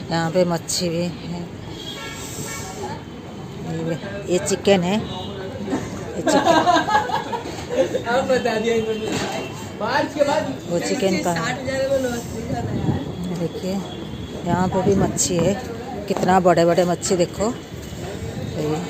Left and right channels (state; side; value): identical; both; correlation 1.00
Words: यहाँ पे मच्छी भी है। ये चिकन है, ये चिकन वो चिकन का। देखिए यहाँ पे भी मच्छी है, कितना बड़े बड़े मच्छी देखो।